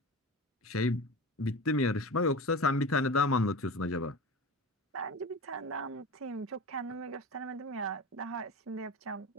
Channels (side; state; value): both; normal; correlation 0.30